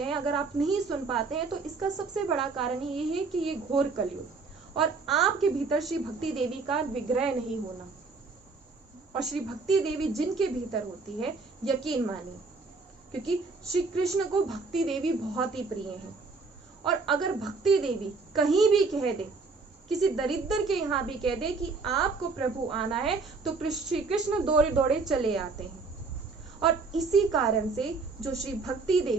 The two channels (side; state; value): left; quieter; 4.2 dB